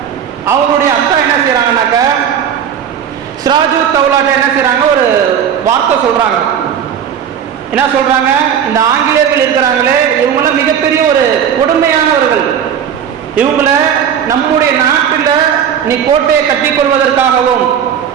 அவருடைய அத்தா என்ன செய்யறாங்கன்னாக்க, சிராஜுத் தௌலாட்ட என்ன செய்யறாங்க, ஒரு வார்த்தை சொல்றாங்க. என்ன சொல்றாங்க, இந்த ஆங்கிலேயர்கள் இருக்கிறாங்களே, இவங்களாம் மிகப்பெரிய ஒரு கொடுமையானவர்கள். இவங்கள நம்முடைய நாட்டில் நீ கோட்டையை கட்டிக் கொள்வதற்காகவும்,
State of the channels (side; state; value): left; quieter; 8.6 dB